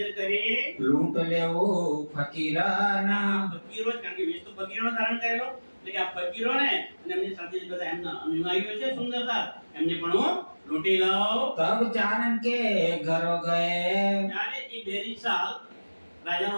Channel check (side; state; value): both; inverted; correlation -1.00